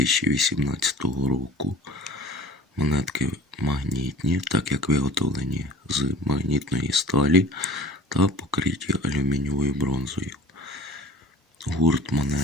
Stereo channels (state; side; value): normal; both; correlation 0.44